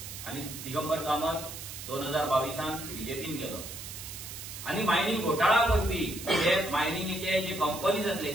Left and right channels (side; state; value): right; noise; hiss, 10 dB below the sound